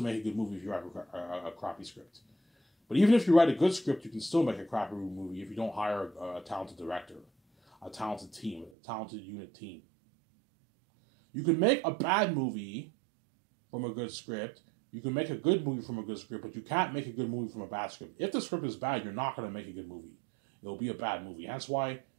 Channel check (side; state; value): left; drops out; at 8.7 s